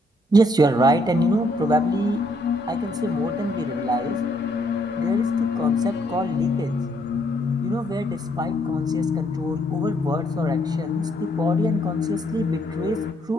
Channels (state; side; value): normal; both; correlation 0.71